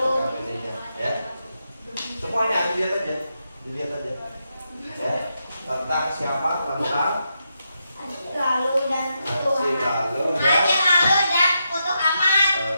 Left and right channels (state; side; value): inverted; both; correlation -0.84